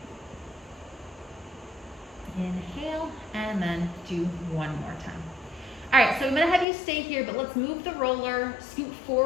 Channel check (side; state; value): right; drops out; at 6.7 s